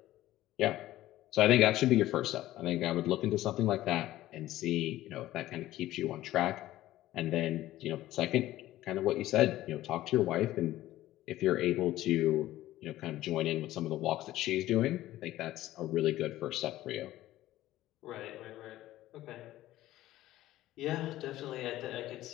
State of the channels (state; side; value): quieter; right; 15.1 dB